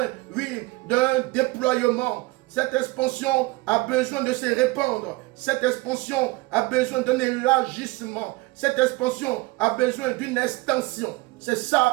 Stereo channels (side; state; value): left; quieter; 21.9 dB